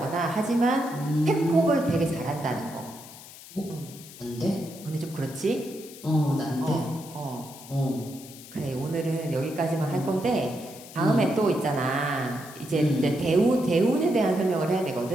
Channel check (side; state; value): left; noise; hiss, 17 dB below the sound